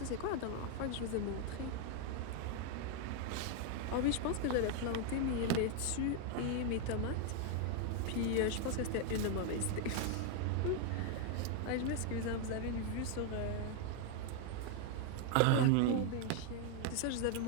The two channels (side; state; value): both; different; correlation 0.00